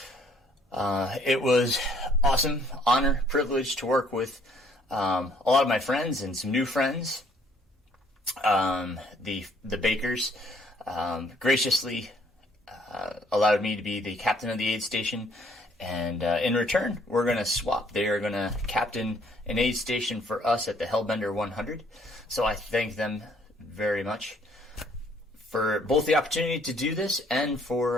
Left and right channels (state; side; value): normal; both; correlation 0.63